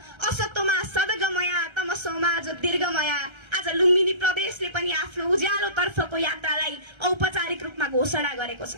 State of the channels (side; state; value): left; late; 1.3 ms